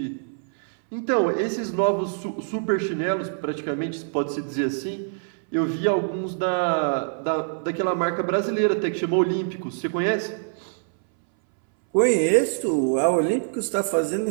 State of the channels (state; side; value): silent; left; 62 dB below the other